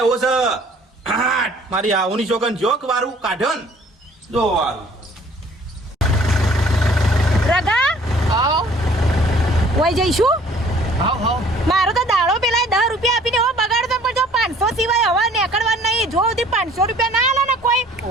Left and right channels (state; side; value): normal; both; correlation 0.55